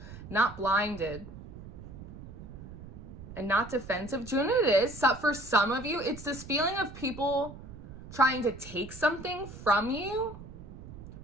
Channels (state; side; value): noise; right; rumble, 14 dB below the sound